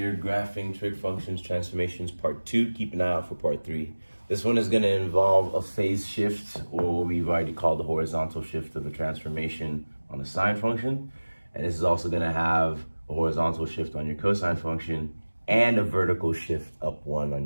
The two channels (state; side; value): inverted; both; correlation -1.00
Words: graphing trig functions transformations part 2. Keep an eye out for part 3. This one is going to involve a phase shift, or what we've already called the horizontal shift of a transformation on a sine function. And this is also going to have a horizontal shift on your cosine function and a vertical shift up 1 on